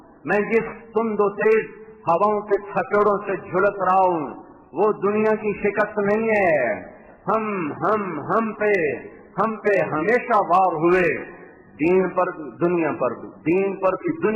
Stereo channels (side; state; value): both; identical; correlation 1.00